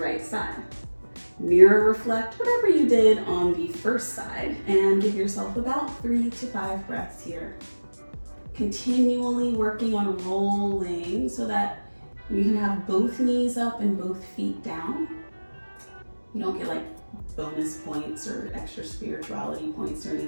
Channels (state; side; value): inverted; both; correlation -1.00